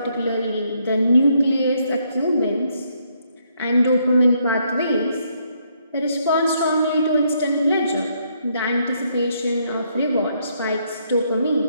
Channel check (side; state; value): both; inverted; correlation -0.73